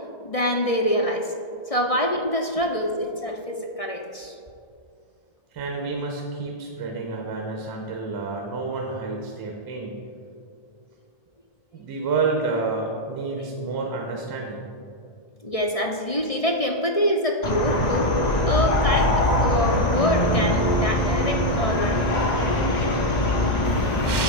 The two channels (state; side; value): late; right; 1.6 ms